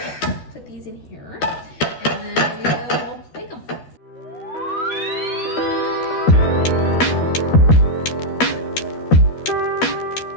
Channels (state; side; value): late; right; 13 ms